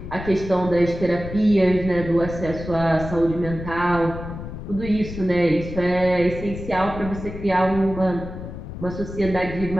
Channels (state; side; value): noise; left; rumble, 10 dB below the sound